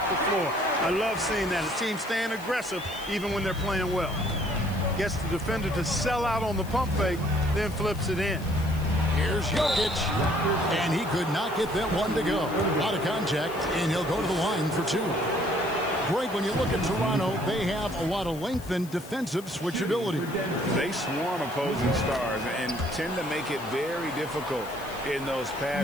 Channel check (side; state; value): left; noise; hiss, 18 dB below the sound